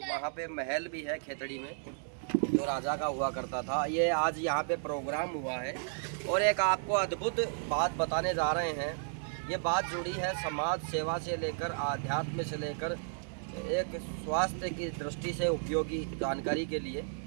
वहाँ पे महल भी है खेतड़ी में, जो राजा का हुआ करता था। ये आज यहाँ पे प्रोग्राम हुआ है और एक आपको अद्भुत बात बताने जा रहे हैं। ये बात जुड़ी है समाज सेवा से लेकर आध्यात्म से लेकर एक स्वास्थ्य की दृष्टि से उपयोगी जानकारी के लिए।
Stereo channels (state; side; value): silent; left; digital silence